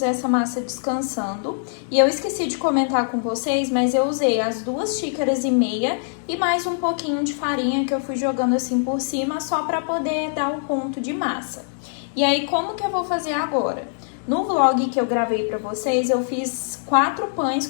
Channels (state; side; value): silent; right; digital silence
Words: essa massa descansando. E eu esqueci de comentar com vocês, mas eu usei as 2,5 xícaras e mais um pouquinho de farinha que eu fui jogando assim por cima só para poder dar um ponto de massa. E aí como que eu vou fazer agora? No vlog que eu gravei pra vocês, eu fiz 4 pães